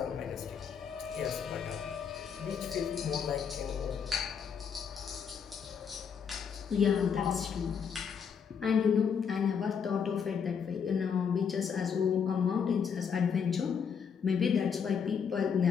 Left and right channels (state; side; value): quieter; right; 6.8 dB